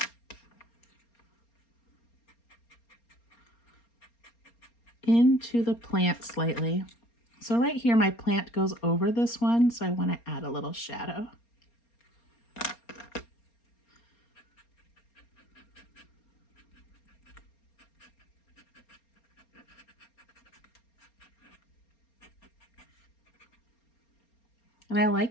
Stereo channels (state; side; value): late; right; 4.3 ms